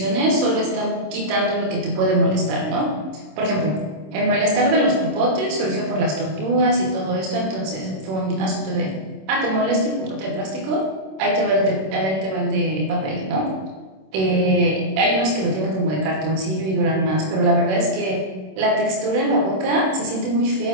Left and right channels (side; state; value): left; late; 26 ms